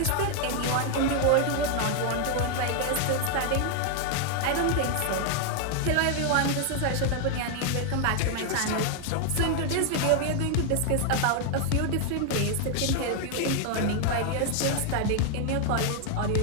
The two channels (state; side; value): different; both; correlation 0.00